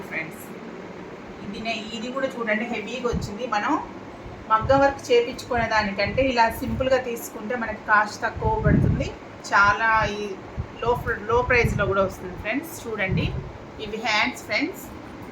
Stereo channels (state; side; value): identical; both; correlation 1.00